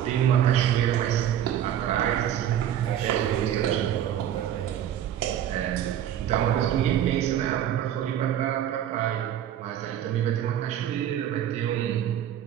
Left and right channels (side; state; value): left; quieter; 10.7 dB